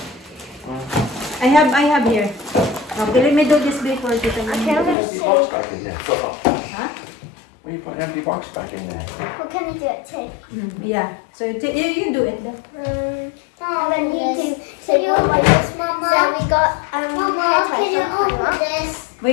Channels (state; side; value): drops out; right; at 5.0 s